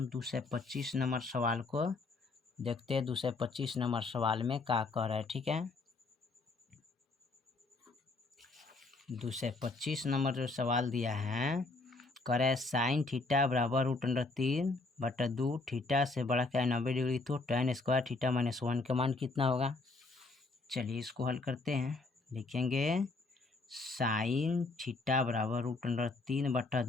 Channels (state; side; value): quieter; right; 3.5 dB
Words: 225 नंबर सवाल को देखते हैं। 225 नंबर सवाल में क्या कह रहा है, ठीक है। 225 नंबर जो सवाल दिया है, कह रहा है साइन थीटा बराबर √3/2 थीटा से बड़ा क्या है 90 डिग्री, तो tan स्क्वायर थीटा माइनस 1 का मान कितना होगा। चलिए इसको हल करते हैं, लिखेंगे साइन थीटा बराबर